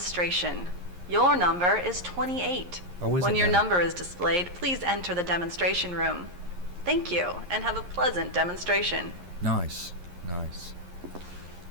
Your number is 28. Oh, is it now? When your number is displayed, please enter the demonstration room. Thank you, and have a pleasant demonstration. Nice. Can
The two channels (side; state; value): left; late; 11 ms